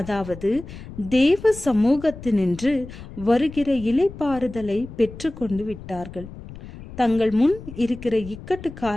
தேவ சமூகத்தினின்று வருகிற இளைப்பாறுதலை பெற்று கொண்டு விட்டார்கள். தங்கள் முன் இருக்கிற இக்கட்டு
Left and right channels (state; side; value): noise; left; rumble, 14 dB below the sound